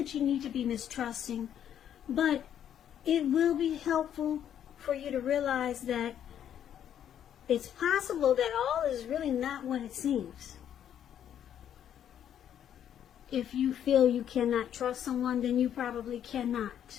you need to be mistrusting, but it will be helpful for you to realize that it's possible that all is really not what it seems. If you feel you cannot trust someone, then you probably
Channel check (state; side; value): quieter; right; 9.8 dB